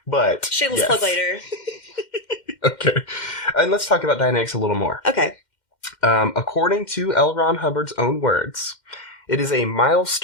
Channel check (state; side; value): late; right; 2.1 ms